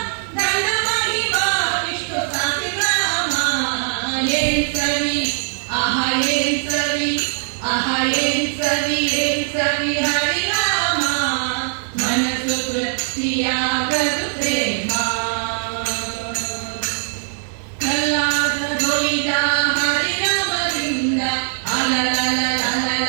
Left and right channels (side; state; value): left; silent; digital silence